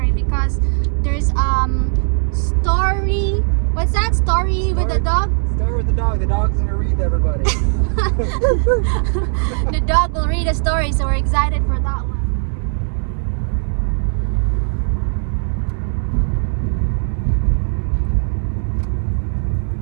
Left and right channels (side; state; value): left; silent; digital silence